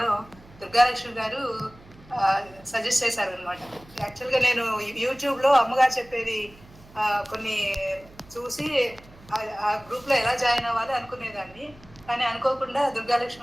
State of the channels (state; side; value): noise; right; hum, 23 dB below the sound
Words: దుర్గాలక్ష్మి గారు సజెస్ట్ చేశారు అనమాట. యాక్చువల్గా నేను యూట్యూబ్లో అమ్మగారు చెప్పేది కొన్ని చూసి ఆ గ్రూప్లో ఎలా జాయిన్ అవ్వాలి అనుకునేదాన్ని. కానీ అనుకోకుండా